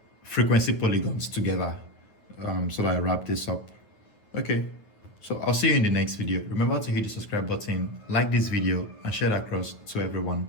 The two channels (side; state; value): right; late; 9.5 ms